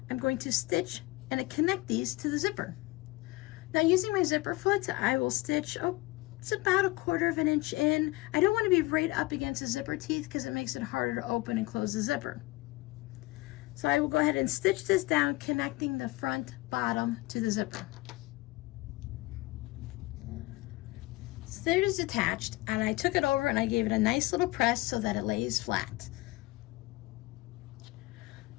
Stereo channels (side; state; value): right; quieter; 20.9 dB